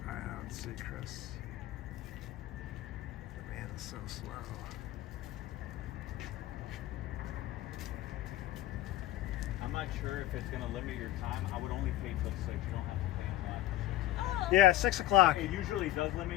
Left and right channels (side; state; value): right; quieter; 15.2 dB